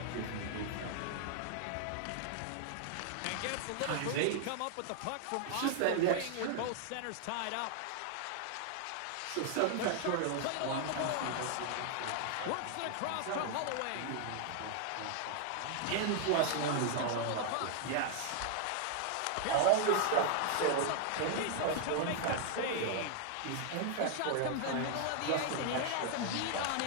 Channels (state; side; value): different; both; correlation 0.00